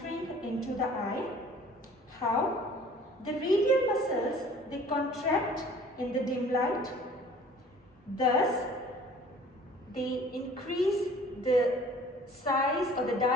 into the eye. How? The radial muscles, they contract in the dim light. Thus, they increase the size or the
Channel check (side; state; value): both; normal; correlation 0.50